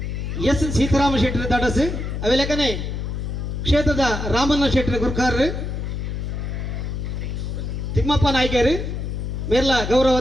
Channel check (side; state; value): left; noise; hum, 3 dB below the sound